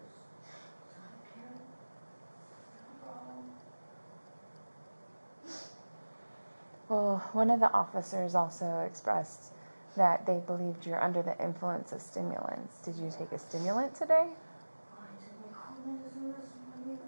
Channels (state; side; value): inverted; both; correlation -1.00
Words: So I can't. No problem. Well, one of the officers also expressed that they believed you're under the influence of stimulants. Did you take a stimulant today? I took my cold medicine this morning.